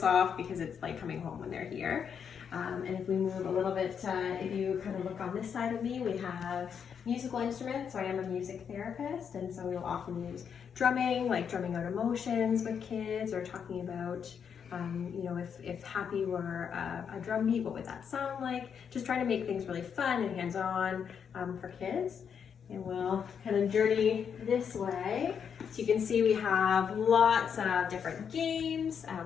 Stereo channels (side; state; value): right; quieter; 7.3 dB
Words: off, because it's like coming home when they're here. And if we move a little bit, if you kind of look on this side of me, we have musical instruments. So I am a music therapist, and so we'll often use drumming, like drumming out emotions with kids, or talking about you know, if happy were a drum beat, what would that sound like? Just trying to make things really fun and hands-on for kids. And we'll kind of journey this way. So you can see we have lots of different games.